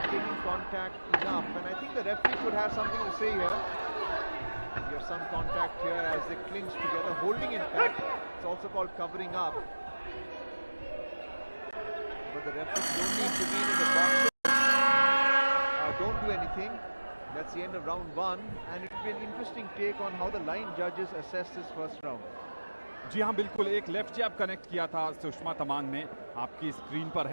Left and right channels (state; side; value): inverted; both; correlation -1.00